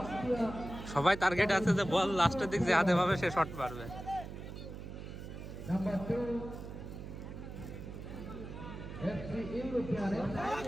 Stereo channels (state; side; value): noise; right; hum, 10 dB below the sound